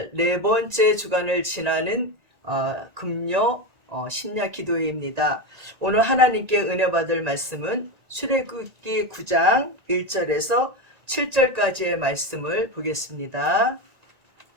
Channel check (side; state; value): left; late; 1.9 ms